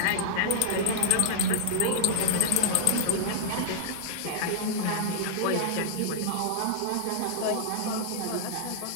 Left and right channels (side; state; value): both; different; correlation -0.01